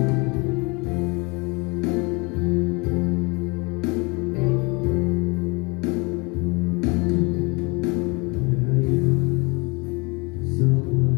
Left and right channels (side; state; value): right; quieter; 28.2 dB